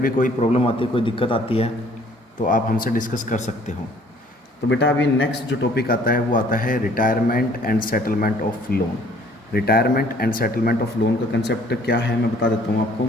कोई प्रॉब्लम आती है, कोई दिक्कत आती है तो आप हमसे डिस्कस कर सकते हो। तो बेटा अभी नेक्स्ट जो टॉपिक आता है वो आता है retirement and settlement of loan. Retirement and settlement of loan का कंसेप्ट क्या है मैं बता देता हूँ आपको।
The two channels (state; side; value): normal; both; correlation 0.58